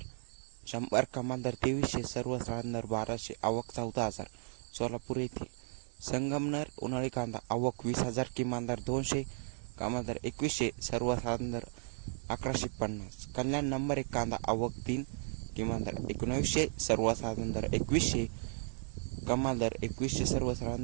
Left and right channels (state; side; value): silent; left; 54 dB below the other